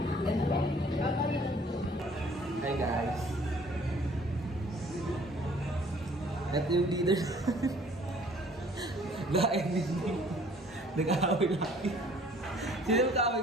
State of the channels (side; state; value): both; normal; correlation 0.56